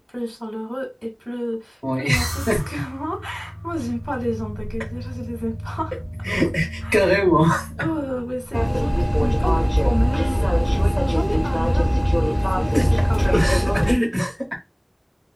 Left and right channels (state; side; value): identical; both; correlation 1.00